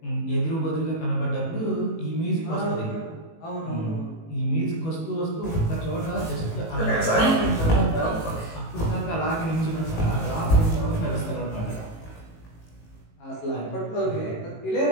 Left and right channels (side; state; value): right; late; 18 ms